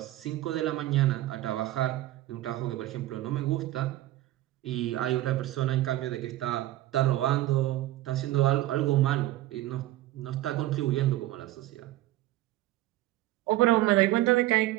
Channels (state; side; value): quieter; left; 15.7 dB